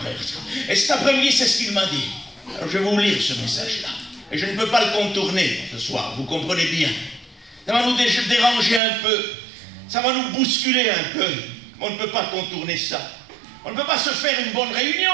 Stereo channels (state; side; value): drops out; left; at 8.8 s